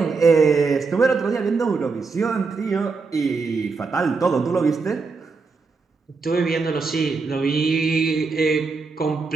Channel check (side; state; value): left; quieter; 4.5 dB